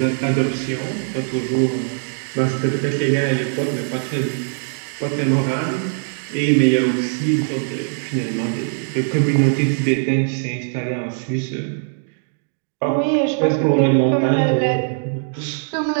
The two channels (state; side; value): silent; left; digital silence